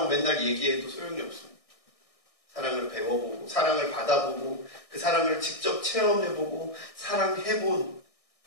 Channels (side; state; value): right; late; 1.6 ms